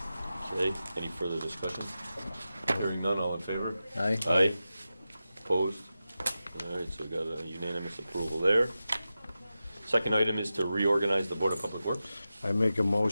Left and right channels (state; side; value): inverted; both; correlation -0.92